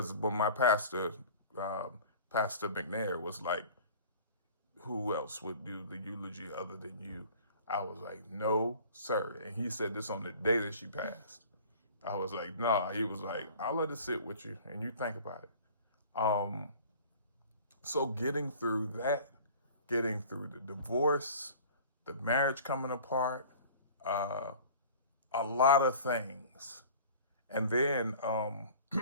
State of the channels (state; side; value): inverted; both; correlation -0.44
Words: when my pastor, Pastor McNair, was like, who else would do the eulogy other than you? I was like, no, sir. And he said this on the day that she passed. I was like, nah. He was like, I'll let it sit with you and you think about it. So getting through that, getting through the divorce, the marriage coming apart, a lot of things. And then